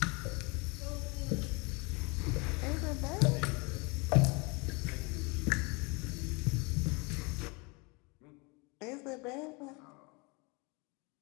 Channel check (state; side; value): quieter; right; 28.8 dB